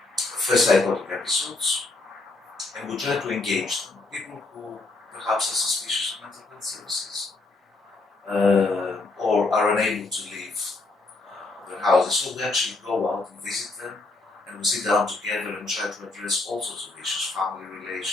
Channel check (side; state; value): right; quieter; 3.3 dB